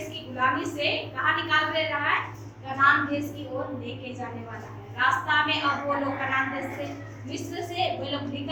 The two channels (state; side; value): identical; both; correlation 1.00